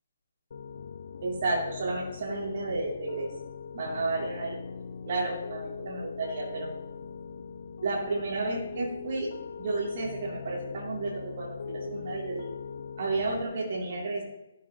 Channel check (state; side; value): inverted; both; correlation -0.78